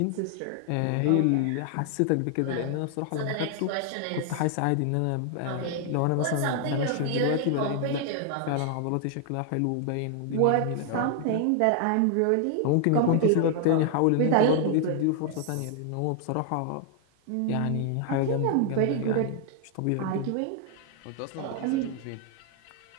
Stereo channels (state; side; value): different; both; correlation 0.00